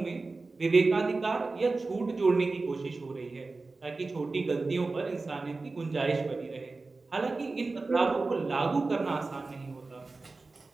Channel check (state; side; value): quieter; left; 3.6 dB